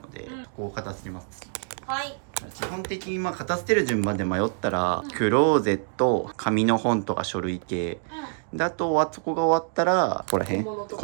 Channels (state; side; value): silent; left; digital silence